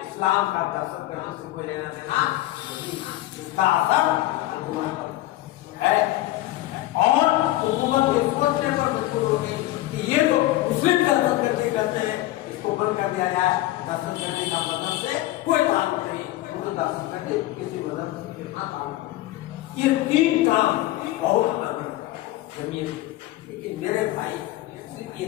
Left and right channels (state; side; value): quieter; right; 16.4 dB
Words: इस्लाम का दहशतगर्दी से कोई लेना देना नहीं, इसका असर है। और हुकूमत के सोचने पर मजबूर होगी कि ये तो मुस्लिम दहशतगर्दी करते हैं, इसको बंद कर दिया जाए। दहशतगर्दी का मजहब से कोई ताल्लुक नहीं, तो दहशतगर्दी किसी मजहब से कितना ताल्लुक नहीं। ये 3 काम बहुत जमीन, लेकिन मेरे भाई सिर्फ ये